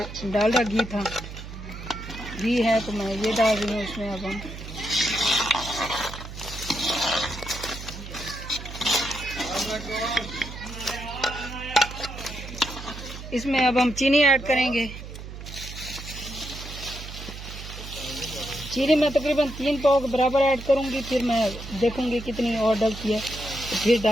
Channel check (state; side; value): noise; right; hum, 11 dB below the sound